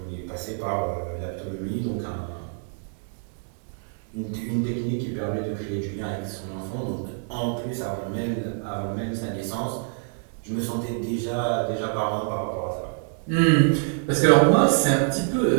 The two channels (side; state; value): left; silent; 61 dB below the other